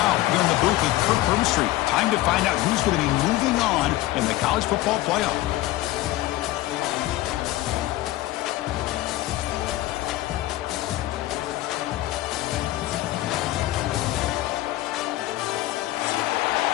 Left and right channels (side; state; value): right; quieter; 16.5 dB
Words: here in the booth with Kirk Herbstreit. Time to find out who's going to be moving on in the college football playoff.